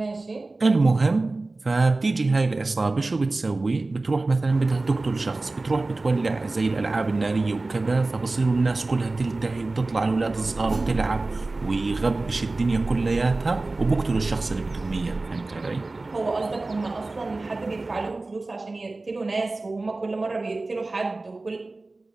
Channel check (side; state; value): left; quieter; 3.2 dB